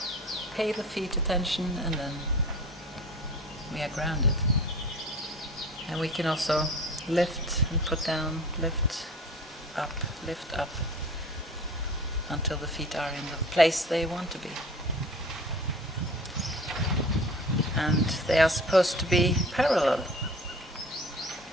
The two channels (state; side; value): normal; both; correlation 0.42